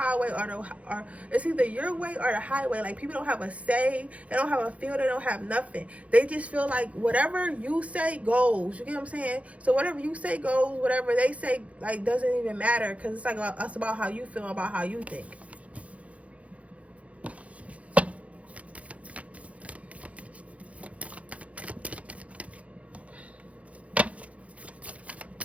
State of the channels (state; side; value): late; left; 0.065 ms